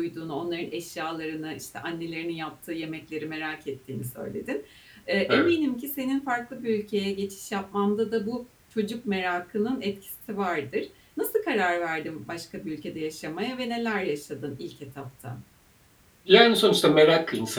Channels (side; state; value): both; identical; correlation 1.00